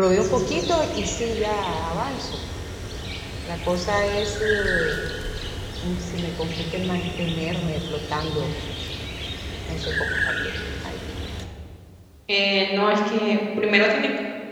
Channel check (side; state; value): both; identical; correlation 1.00